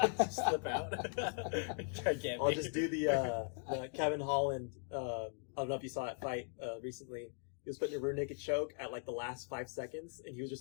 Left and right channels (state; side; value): silent; right; 52 dB below the other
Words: slip out. Try to get I'll me. just do the Kevin Holland, I don't know if you saw that fight recently. He was putting a rear naked choke at like the last 5 seconds, and he was